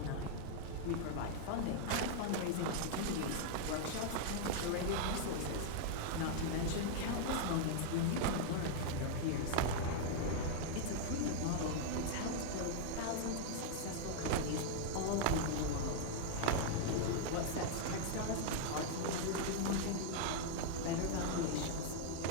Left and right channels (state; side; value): different; both; correlation -0.01